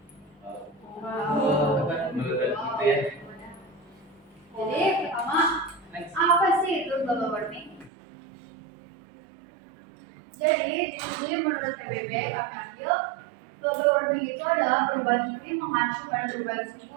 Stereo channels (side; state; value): left; drops out; at 7.9 s